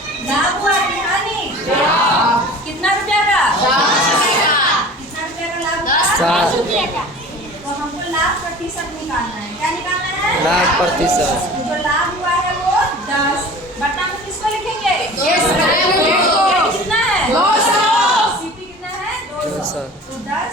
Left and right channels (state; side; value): normal; both; correlation 0.41